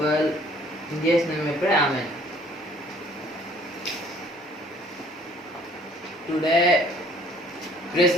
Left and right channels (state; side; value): normal; both; correlation 0.57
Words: In Jesus' name I pray. Amen. Today, praise